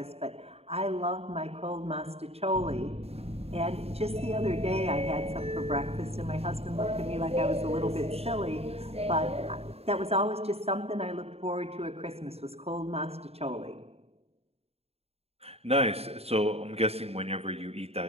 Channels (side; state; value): left; late; 0.29 ms